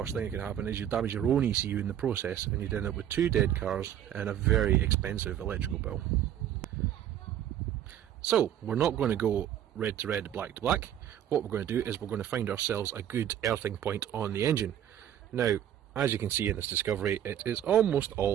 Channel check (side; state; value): left; quieter; 10.7 dB